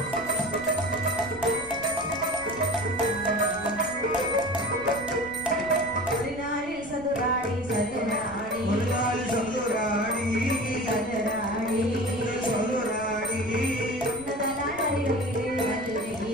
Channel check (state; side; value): noise; right; rumble, 19 dB below the sound